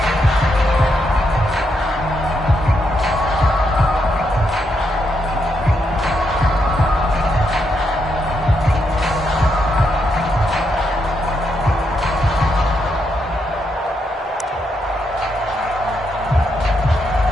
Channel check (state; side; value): normal; both; correlation 0.80